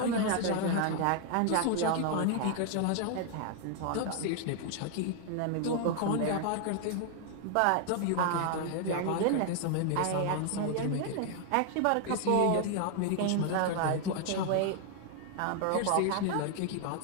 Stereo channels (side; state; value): both; different; correlation 0.00